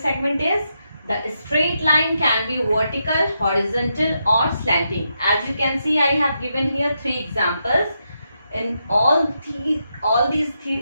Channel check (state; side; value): inverted; both; correlation -0.83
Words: is the straight line can be vertical, horizontal or slanting. As you can see, I have given here 3 examples. In all these